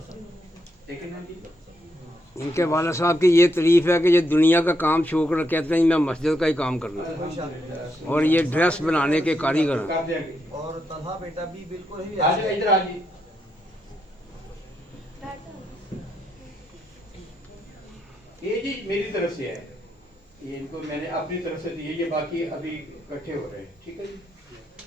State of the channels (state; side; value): normal; both; correlation 0.80